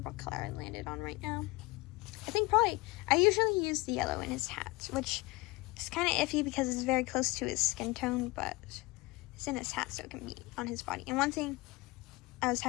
what color I landed on right now. I usually use the yellow in his hat, which is kind of iffy because it's very close to his skin tone, but it's in his hat, so it can be on his body. And one thing I was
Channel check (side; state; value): right; quieter; 22.9 dB